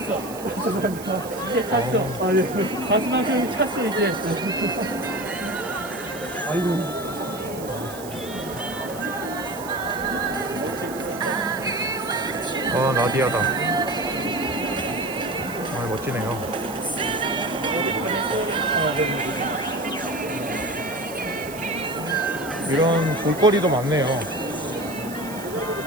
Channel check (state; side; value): noise; right; hiss, 15 dB below the sound